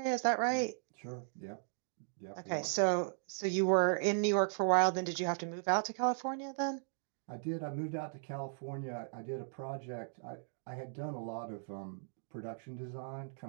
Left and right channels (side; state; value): left; silent; digital silence